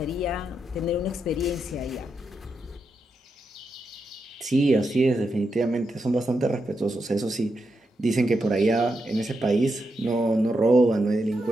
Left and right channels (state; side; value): normal; both; correlation 0.85